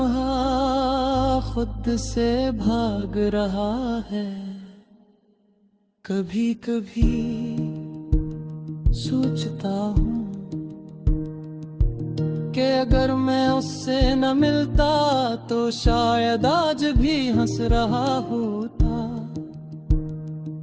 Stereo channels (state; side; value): identical; both; correlation 1.00